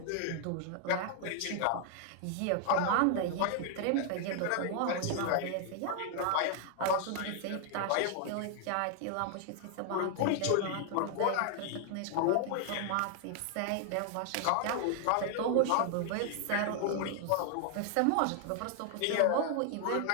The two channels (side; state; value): both; different; correlation 0.00